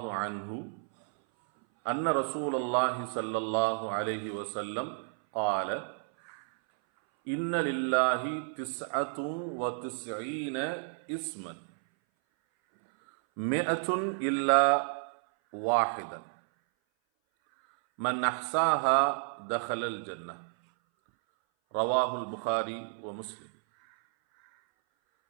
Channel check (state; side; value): silent; left; 57 dB below the other